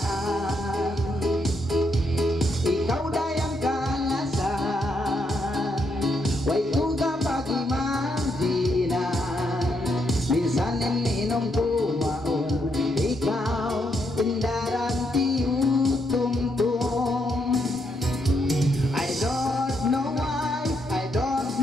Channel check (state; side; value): normal; both; correlation 0.77